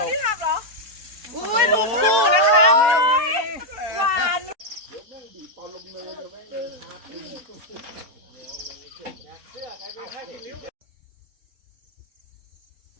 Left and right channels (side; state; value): left; late; 4.1 ms